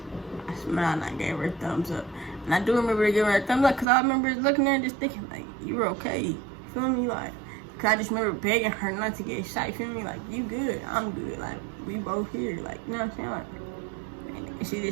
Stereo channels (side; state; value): left; drops out; at 3.9 s